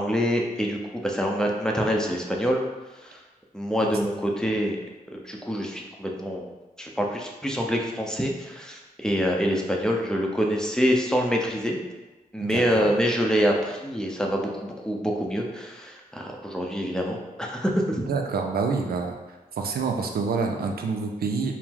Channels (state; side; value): normal; both; correlation 0.77